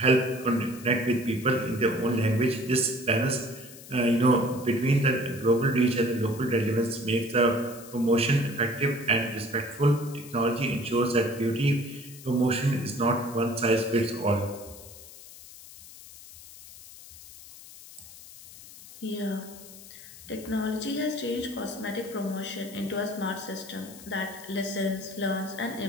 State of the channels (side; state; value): left; noise; hiss, 17 dB below the sound